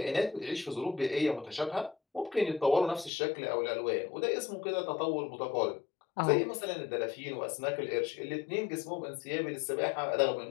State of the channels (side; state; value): right; drops out; at 3.1 s